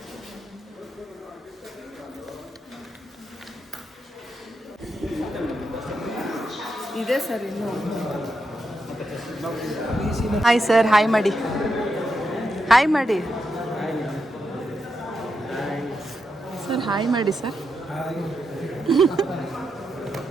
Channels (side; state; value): both; normal; correlation 0.85